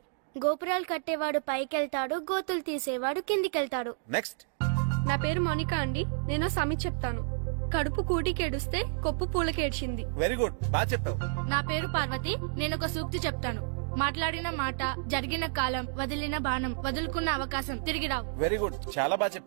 గోపురాలు కట్టేవాడు పైకెళ్తాడు, గోతులు తీసేవాడు కిందికెళ్తాడు. నెక్స్ట్. నా పేరు మోనికా అండి. నేను సామెత చెప్తాను. కడుపు కూటికేడుస్తే కొప్పు పూలకేడ్చింది. వెరీ గుడ్, బాగా చెప్పావు. నా పేరు పార్వతి. నేను ఒక సూక్తి చెప్తాను. మాట్లాడిన మాట, జరిగిన కాలం, వదిలిన బాణం, వదులుకున్న అవకాశం తిరిగి రావు. వెరీ గుడ్, చాలా బాగా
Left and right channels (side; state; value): left; silent; digital silence